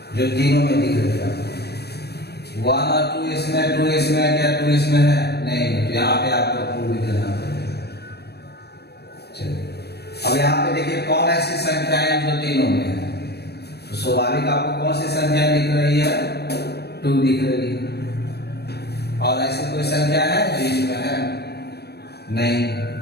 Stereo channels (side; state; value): right; late; 0.47 ms